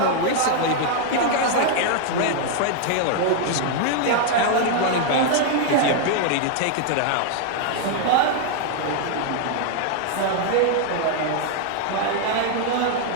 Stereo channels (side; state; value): both; different; correlation 0.00